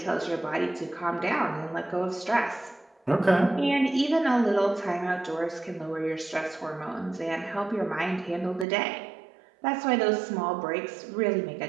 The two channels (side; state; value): left; drops out; at 8.7 s